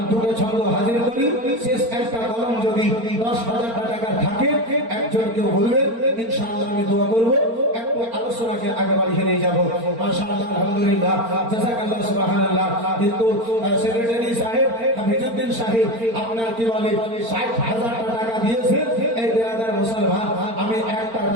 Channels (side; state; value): left; late; 4.4 ms